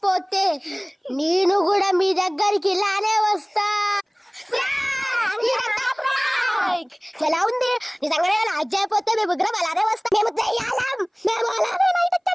నేను కూడా మీ దగ్గరికి ఇలానే వస్తా. ఎలా ఉంది నిజంగానే? లైక్ చేయకపోతే మేము ముగ్గురం అలానే వస్తాం. మేము చెయ్యాలం, మేము అలానే లైక్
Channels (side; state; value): both; identical; correlation 1.00